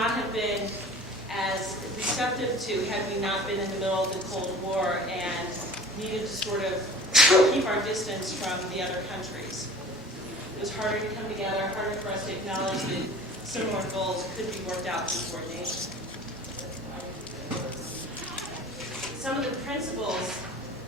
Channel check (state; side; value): normal; both; correlation 0.42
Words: have been as receptive to had we not been in the middle of the Cold War and needed to sort of keep our distance from the other countries. It was harder to come together, harder for us to acknowledge that similar goals could be worked out through coordination. Some of the principles